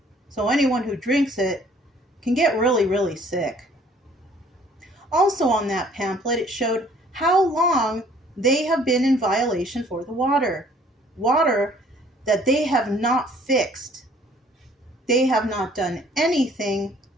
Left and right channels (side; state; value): both; normal; correlation 0.58